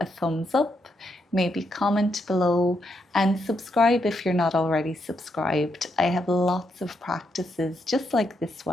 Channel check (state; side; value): normal; both; correlation 0.80